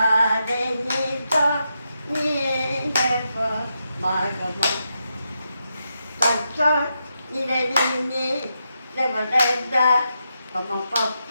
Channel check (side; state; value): both; inverted; correlation -0.85